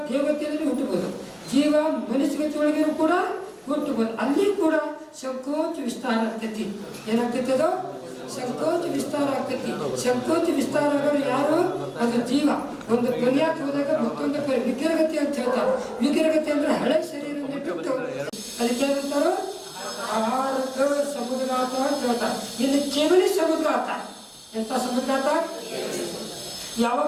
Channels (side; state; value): both; identical; correlation 1.00